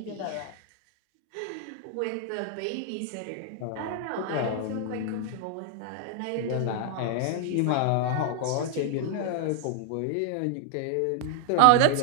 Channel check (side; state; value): both; different; correlation 0.00